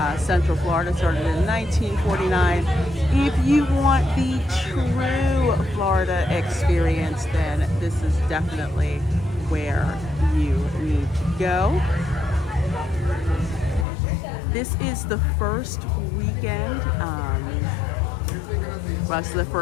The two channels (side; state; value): right; drops out; at 13.9 s